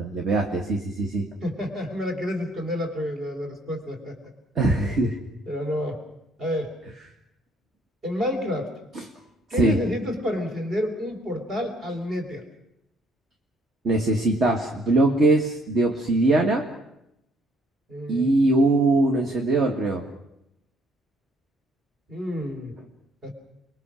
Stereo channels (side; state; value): both; normal; correlation 0.65